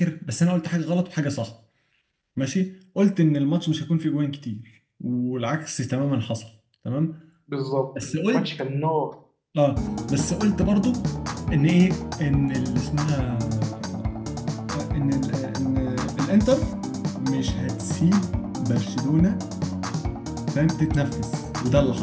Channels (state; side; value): identical; both; correlation 1.00